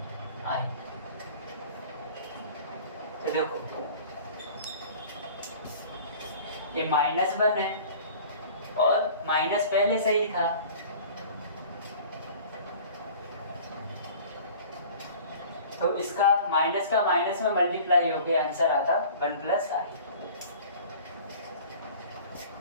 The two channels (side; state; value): both; inverted; correlation -0.45